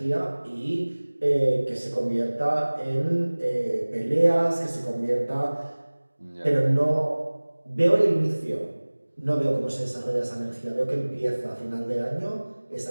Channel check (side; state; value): both; inverted; correlation -1.00